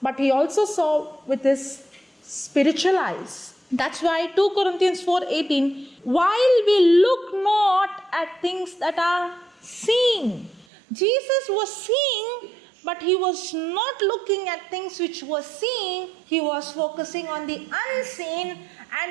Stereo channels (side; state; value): left; drops out; at 10.7 s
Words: but he also saw with his spiritual eyes. That's why 2 Corinthians 4:18, while we look not at things that are seen. Jesus was seeing, but he was not looking at things which were seen. He was focusing on the unseen,